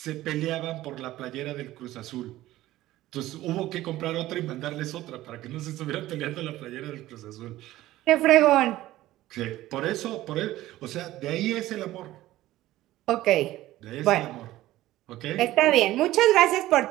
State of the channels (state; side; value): quieter; left; 15.7 dB